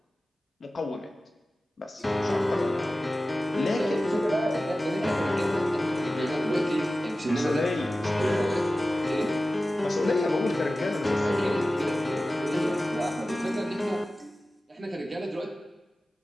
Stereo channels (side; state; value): both; normal; correlation 0.95